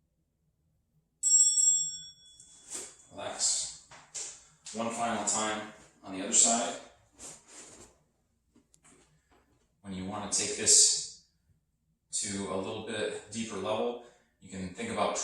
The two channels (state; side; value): identical; both; correlation 1.00